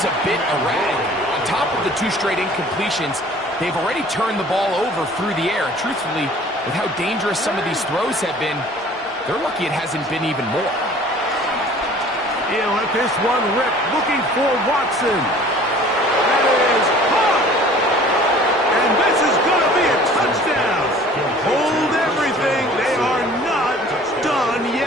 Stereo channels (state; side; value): normal; both; correlation 0.49